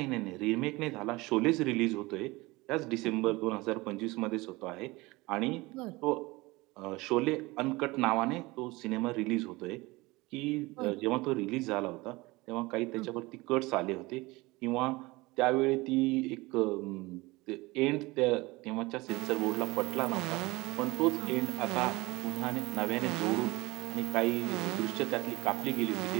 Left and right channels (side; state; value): left; quieter; 22.1 dB